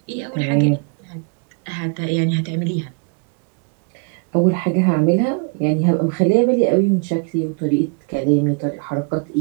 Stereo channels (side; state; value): left; quieter; 35.6 dB